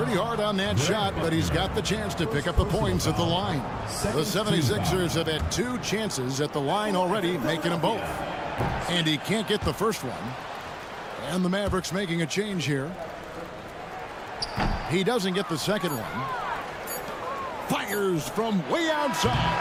hard on that shot, but he's got the chance to pick up the points at the line. The 76ers have had 2 chances at the line already, making them both. And he can't get the first one. And the Mavericks making a change here. He doesn't get the second one. Fires from way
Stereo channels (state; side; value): identical; both; correlation 1.00